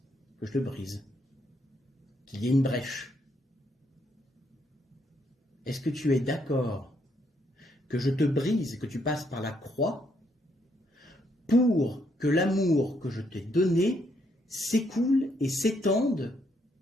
que je te brise, qu'il y ait une brèche ? Est-ce que tu es d'accord que je te brise, que tu passes par la croix, pour que l'amour que je t'ai donné s'écoule et s'étende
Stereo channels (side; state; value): both; normal; correlation 0.74